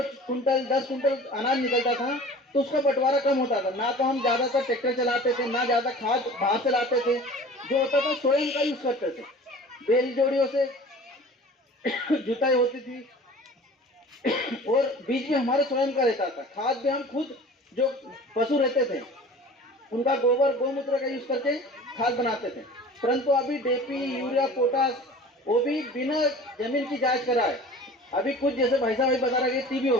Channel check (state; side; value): normal; both; correlation 0.42